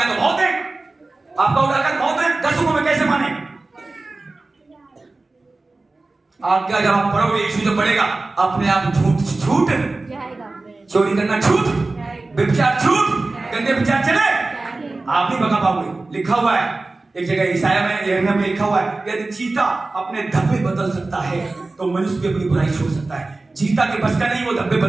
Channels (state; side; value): quieter; left; 3.3 dB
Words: तो बहुत है, आपका उदाहरण बहुत है, 10 में कैसे माने? आज्ञा जब आप पढ़ोगे, यीशु जब पढ़ेगा, अपने आप झूठ जाएगा, चोरी करना झूठ, व्यभिचार झूठ, गंदे विचार चले, आप नहीं बता पाओगे। लिखा हुआ है एक जगह ईसाया में, यिर्मयाह में लिखा हुआ है, यदि चीता अपने धब्बे बदल सकता है तो मनुष्य भी अपनी बुराई छोड़ सकता है। चीता के बस का नहीं वो धब्बे